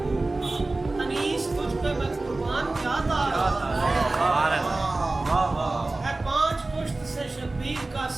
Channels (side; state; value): left; quieter; 3.1 dB